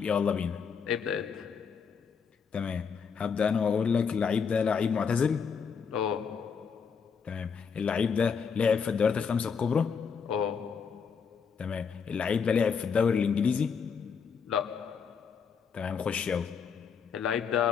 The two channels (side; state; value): right; quieter; 6.2 dB